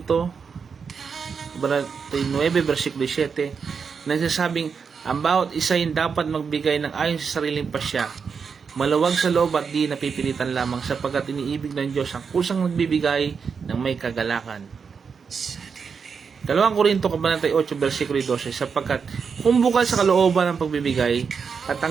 9 versikulo 7, nagsasabing ang bawat isa ay dapat magbigay ng ayon sa sariling pasya, maluwag sa loob at di napipilitan lamang, sapagkat iniibig ng Diyos ang kusang nagbibigay ng may kagalakan. Ikalawang Korinto 8 versikulo 12, sapagkat kung bukal sa kalooban ng pagbibigay at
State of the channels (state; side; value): quieter; left; 5.9 dB